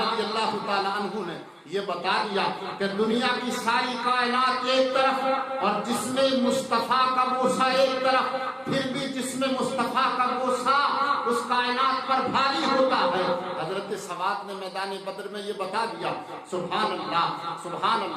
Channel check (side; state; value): both; identical; correlation 1.00